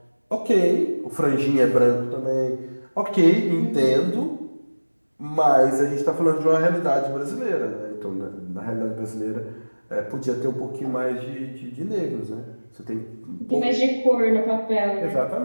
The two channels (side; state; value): both; inverted; correlation -1.00